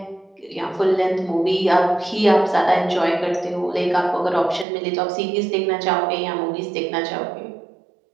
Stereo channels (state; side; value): drops out; left; at 4.7 s